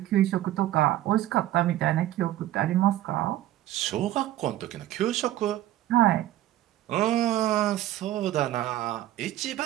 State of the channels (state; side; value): quieter; left; 13.9 dB